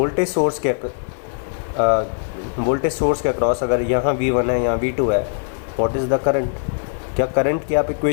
सोर्स के अक्रॉस अगर यहाँ V1 है, यहाँ V2 है, व्हाट इज़ द करंट, क्या करंट की आप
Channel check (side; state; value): right; silent; digital silence